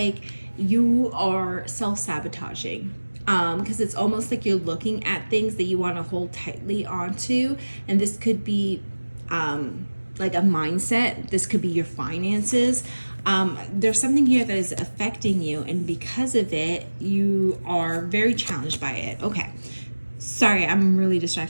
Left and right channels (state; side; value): inverted; both; correlation -1.00